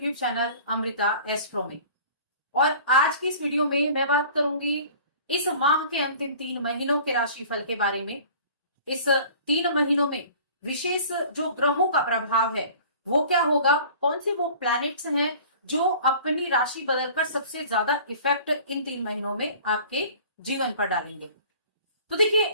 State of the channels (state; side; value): inverted; both; correlation -0.46